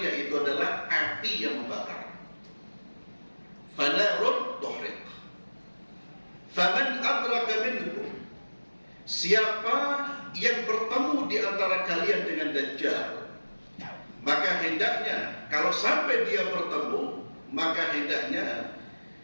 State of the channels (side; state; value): both; inverted; correlation -1.00